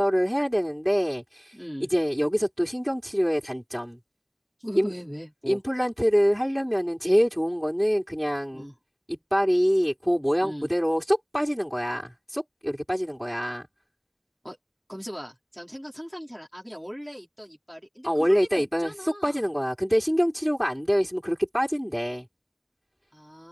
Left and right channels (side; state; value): both; identical; correlation 1.00